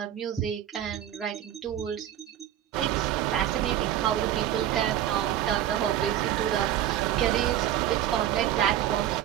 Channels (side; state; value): left; quieter; 11.5 dB